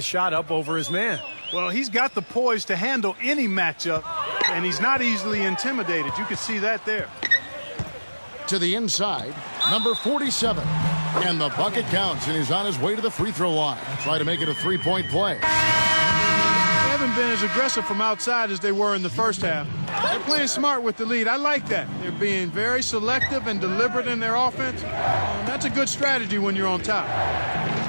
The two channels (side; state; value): both; inverted; correlation -1.00